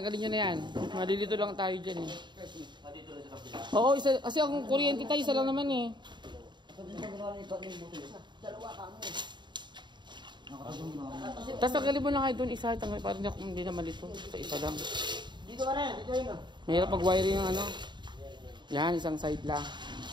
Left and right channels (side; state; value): left; late; 0.22 ms